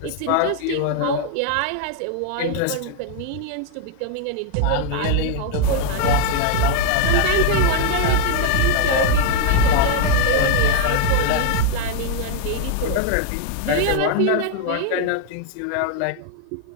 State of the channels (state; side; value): different; both; correlation 0.00